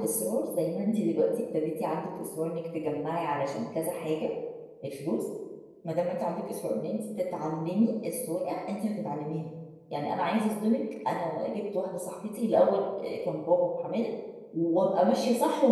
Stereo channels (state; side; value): identical; both; correlation 1.00